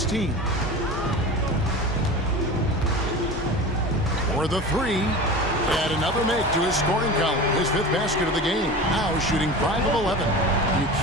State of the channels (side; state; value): both; normal; correlation 0.33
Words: For the three. Add another make to his scoring column. His 5th basket of the game. Now shooting 5 of 11. You